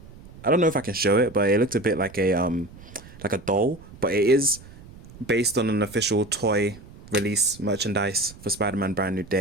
I don't know if I can show it, but it looked a bit like a doll. But it is based on an official toy release merchandise for Spider-Man Brand New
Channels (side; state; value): right; noise; rumble, 19 dB below the sound